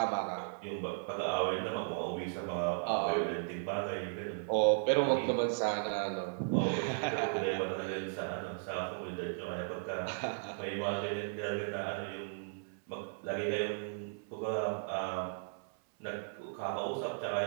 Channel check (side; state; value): left; silent; 54 dB below the other